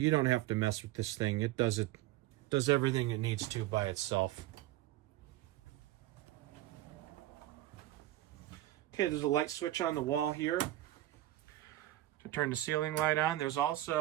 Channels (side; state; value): left; quieter; 15.5 dB